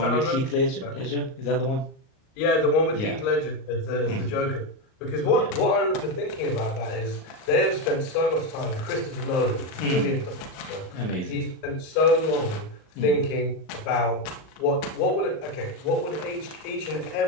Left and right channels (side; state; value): right; late; 38 ms